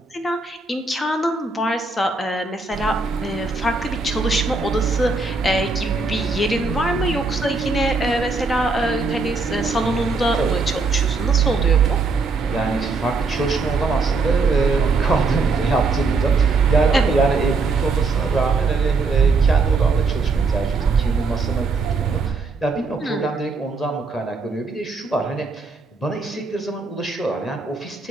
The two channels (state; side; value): quieter; left; 3.9 dB